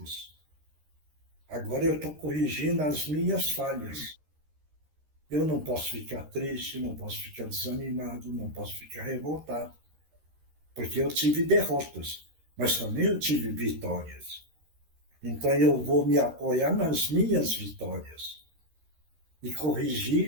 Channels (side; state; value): left; late; 13 ms